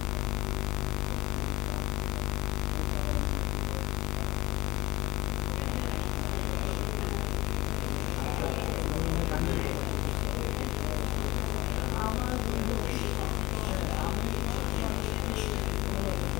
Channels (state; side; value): quieter; right; 19.6 dB